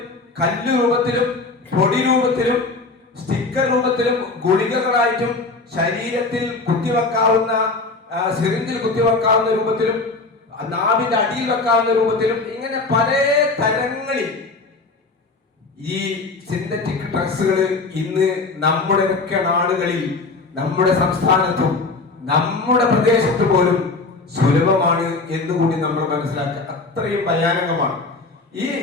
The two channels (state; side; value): quieter; right; 3.6 dB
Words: കല്ല് രൂപത്തിലും പൊടി രൂപത്തിലും സ്റ്റിക്കർ രൂപത്തിലും ഗുളികകളായിട്ടും ശരീരത്തിൽ കുത്തിവെക്കാവുന്ന സിറിഞ്ചിൽ കുത്തിവെക്കാവുന്ന രൂപത്തിലും നാവിന്റെ അടിയിൽ വെക്കാവുന്ന രൂപത്തിലും ഇങ്ങനെ പല തരങ്ങളിൽ ഈ സിന്തറ്റിക് ഡ്രഗ്സുകൾ ഇന്ന് നമ്മുടെ ഒക്കെ നാടുകളിൽ, നമ്മുടെ സംസ്ഥാനത്തും നമ്മുടെ പ്രദേശത്ത് പോലും സുലഭമാണ് എന്നുകൂടി നമ്മൾ മനസ്സിലാക്കുക. അത്രയും ഭയാനകമാണ്.